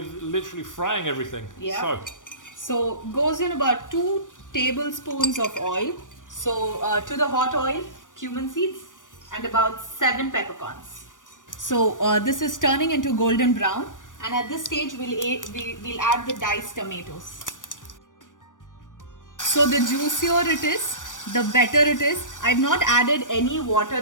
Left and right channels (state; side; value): late; right; 0.88 ms